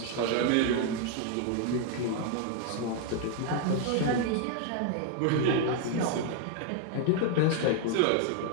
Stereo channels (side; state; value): both; different; correlation 0.00